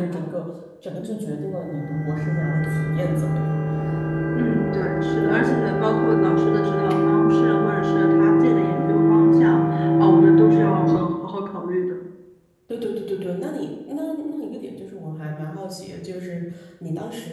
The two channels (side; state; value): both; identical; correlation 1.00